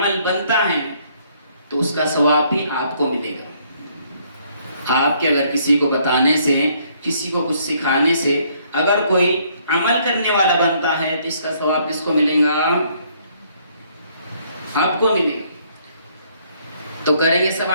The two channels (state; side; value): inverted; both; correlation -0.66